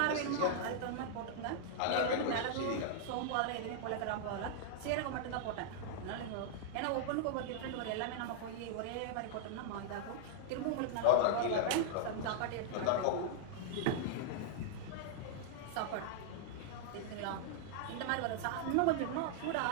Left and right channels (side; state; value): both; different; correlation -0.01